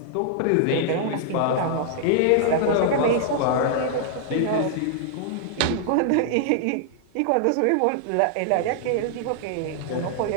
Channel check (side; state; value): both; different; correlation -0.01